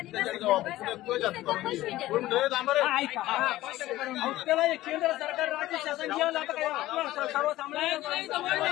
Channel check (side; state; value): right; quieter; 16.0 dB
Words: त्याला केंद्र सरकार राज्य शासन घेऊन जातं काय